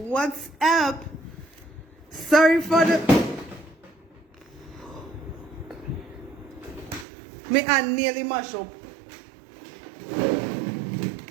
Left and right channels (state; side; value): drops out; left; at 7.1 s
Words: up? Sorry for the... Me hand nearly mash up.